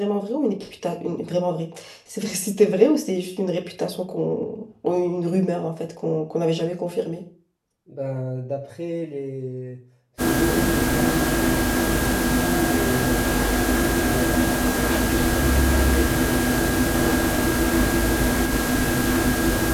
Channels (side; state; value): both; identical; correlation 1.00